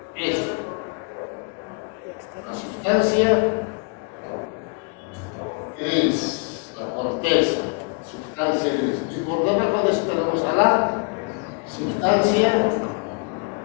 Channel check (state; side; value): quieter; right; 38.5 dB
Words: esto, la sustancia gris, la corteza, sustancia gris. Y por debajo de eso tenemos a la sustancia